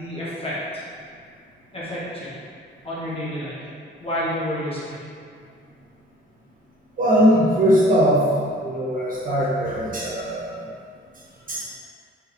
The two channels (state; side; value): normal; both; correlation 0.50